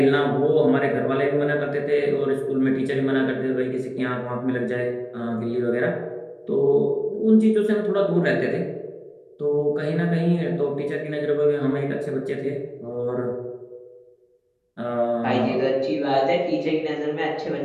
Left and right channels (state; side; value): identical; both; correlation 1.00